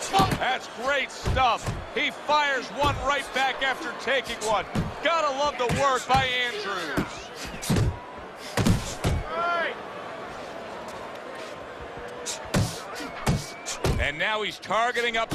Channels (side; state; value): both; identical; correlation 1.00